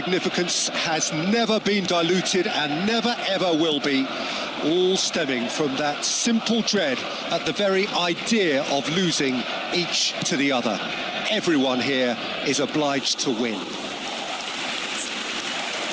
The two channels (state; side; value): identical; both; correlation 1.00